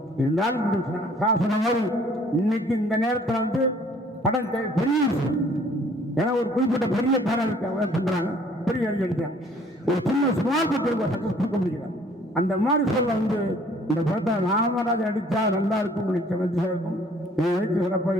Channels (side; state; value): both; normal; correlation 0.57